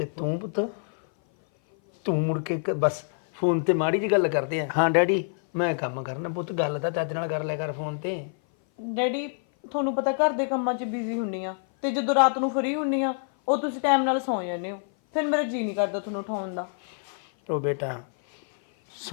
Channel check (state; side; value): silent; right; 56 dB below the other